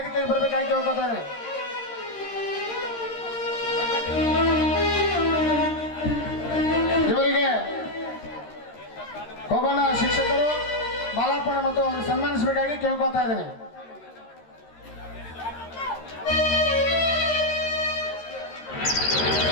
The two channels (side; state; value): right; late; 13 ms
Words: ಬರಬೇಕಾಗಿ ಕೇಳ್ಕೊತಾ ಇದ್ದೇನೆ. ಇವರಿಗೆ ಹೋಗೋಣ ಶಿಕ್ಷಕರು ಮಾಲಾರ್ಪಣೆ ಮತ್ತು ಅವರಿಗೆ ಸನ್ಮಾನಿಸಬೇಕಾಗಿ ಕೇಳ್ಕೊತಾ ಇದ್ದೇನೆ.